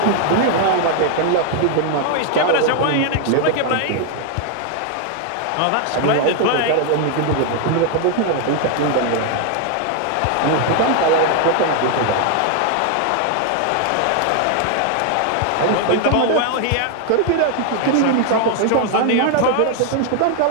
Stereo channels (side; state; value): both; different; correlation 0.00